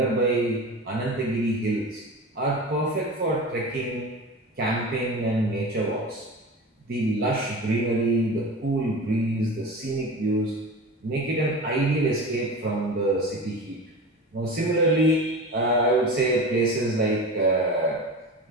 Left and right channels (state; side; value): normal; both; correlation 0.31